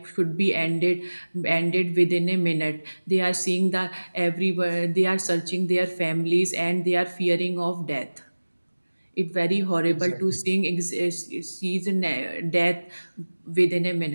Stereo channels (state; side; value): inverted; both; correlation -1.00